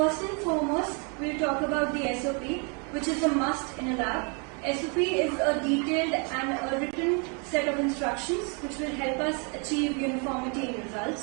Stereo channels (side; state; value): left; quieter; 36.0 dB